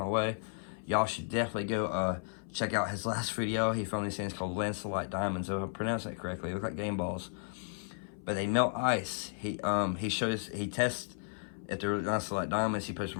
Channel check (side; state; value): right; silent; 55 dB below the other